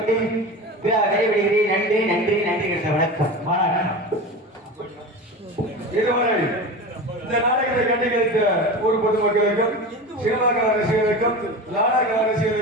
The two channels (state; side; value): normal; both; correlation 0.29